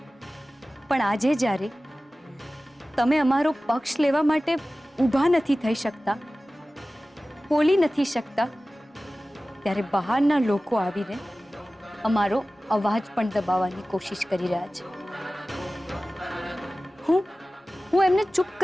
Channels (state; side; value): normal; both; correlation 0.97